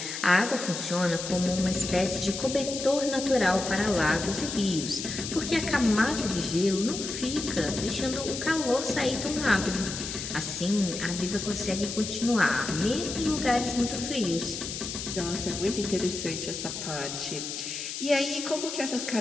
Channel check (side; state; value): left; noise; hiss, 6 dB below the sound